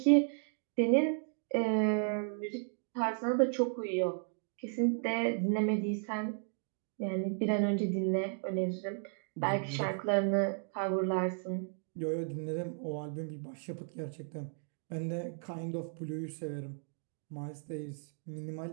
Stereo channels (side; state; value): left; silent; 55 dB below the other